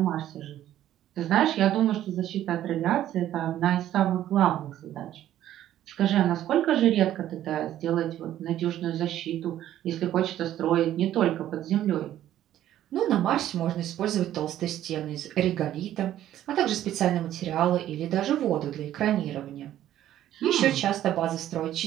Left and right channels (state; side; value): quieter; left; 12.4 dB